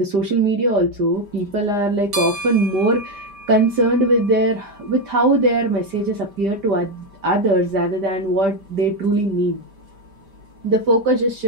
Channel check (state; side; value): late; left; 5.1 ms